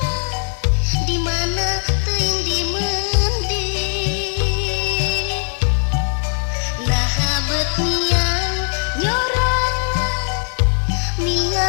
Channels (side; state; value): right; silent; digital silence